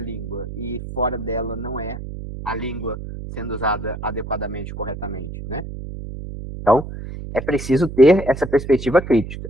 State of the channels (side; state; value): right; noise; hum, 9 dB below the sound